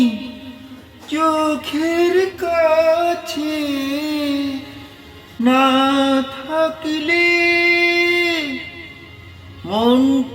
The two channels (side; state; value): both; identical; correlation 1.00